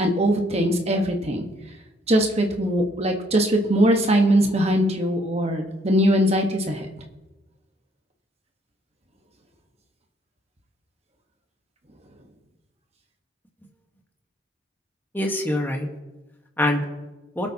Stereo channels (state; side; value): normal; both; correlation 0.67